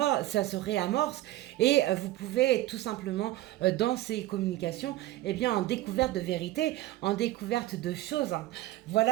réamorce. Et vous pouvez tout simplement, dans ces communications, eh bien, en découverte de vérité, en découverte de choses.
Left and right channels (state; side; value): quieter; left; 15.9 dB